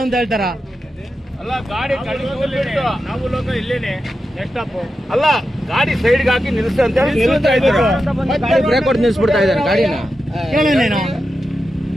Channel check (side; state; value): both; normal; correlation 0.90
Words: ಅಂತ ಹೇಳ್ತಾರ. ಅಲ್ಲ, ಗಾಡಿ ಕಳಿಸ್ಬಿಟ್ಟು ನಾವು ಲೋಕಲ್ ಇಲ್ಲೇನೆ ನೆಕ್ಸ್ಟ್ ಅಪ್. ಅಲ್ಲ, ಗಾಡಿ ಸೈಡ್ಗೆ ಹಾಕಿ ನಿಲ್ಸ ಅಂತ ಹೇಳಿ ನಿಲ್ಸ್ತಾ ಇದ್ರು. ಬ್ರೇಕ್ ಹೊಡೆದು ನಿಲ್ಸ್ಬಿಡ್ತಾ ಇದ್ದಾರೆ ಗಾಡಿನ.